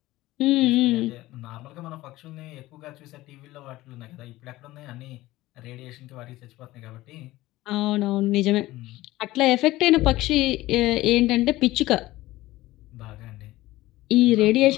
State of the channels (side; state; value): right; quieter; 17.5 dB